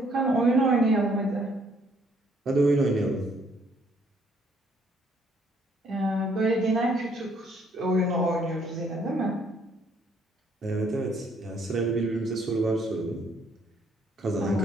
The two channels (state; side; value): normal; both; correlation 0.66